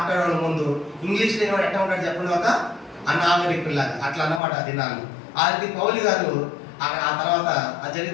ముందు ఇంగ్లీష్ లేని వాడు ఎట్లా ఉంటాడు చెప్పండి, ఒక అనాగరికుల్లాగా అట్లా అన్నమాట ఆ దినాలు. అది పౌలు గారు ఆ తర్వాత ఆ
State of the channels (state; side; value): drops out; right; at 4.4 s